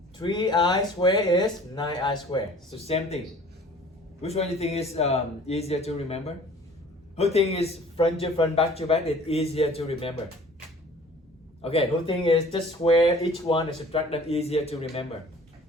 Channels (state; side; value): normal; both; correlation 0.49